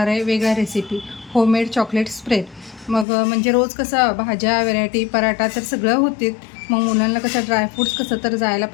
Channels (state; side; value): drops out; right; at 3.1 s